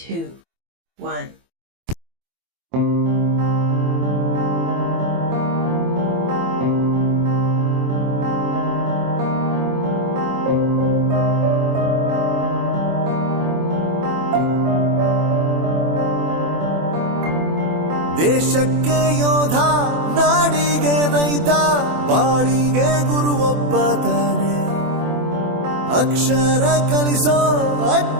1. ದೇಶಕ್ಕೆ ಯೋಧ, ನಾಡಿಗೆ ರೈತ, ಬಾಳಿಗೆ ಗುರು ಒಬ್ಬ ತಾನೆ. ಅಕ್ಷರ ಕಲಿಸೋ,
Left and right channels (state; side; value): late; left; 24 ms